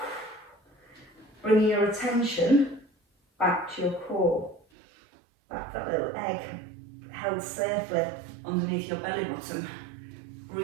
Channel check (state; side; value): drops out; left; at 4.6 s